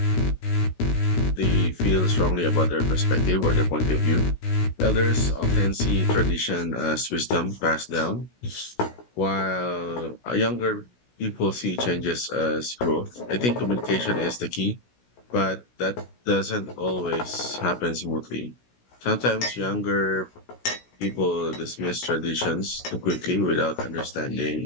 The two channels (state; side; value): late; right; 16 ms